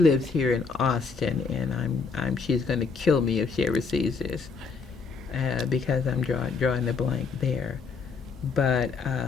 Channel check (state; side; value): quieter; right; 4.9 dB